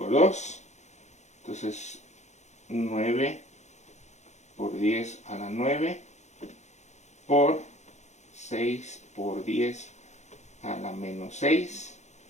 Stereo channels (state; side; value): late; right; 0.33 ms